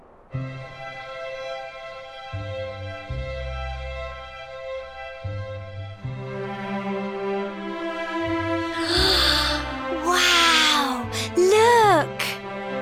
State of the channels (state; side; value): identical; both; correlation 1.00